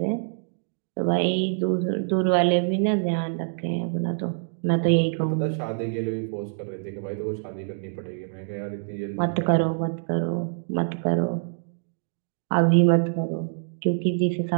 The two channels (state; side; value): silent; left; digital silence